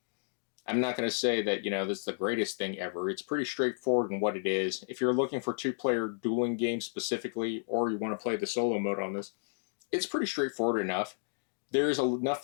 I'm not going to say that, this is the greatest thing ever. It's pretty straightforward in what it is. If you're looking for 2-player dueling games specifically, or you want to play the solo mode on this, it's pretty straightforward enough. There's enough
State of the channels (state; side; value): silent; right; digital silence